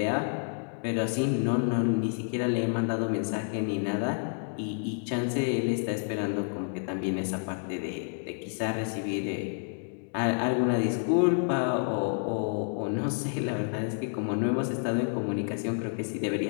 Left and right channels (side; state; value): right; silent; 58 dB below the other